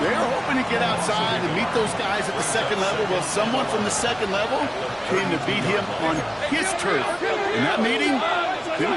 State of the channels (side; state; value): both; identical; correlation 1.00